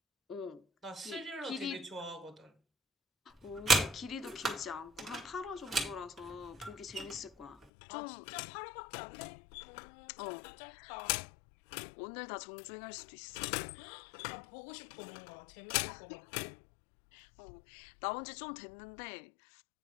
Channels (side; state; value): right; drops out; at 7.6 s